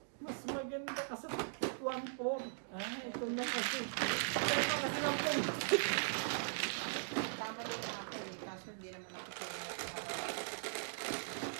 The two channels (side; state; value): left; silent; digital silence